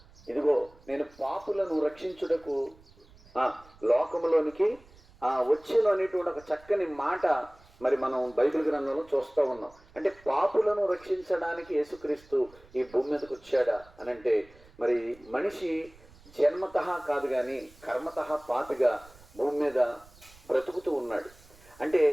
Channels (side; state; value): right; noise; rumble, 25 dB below the sound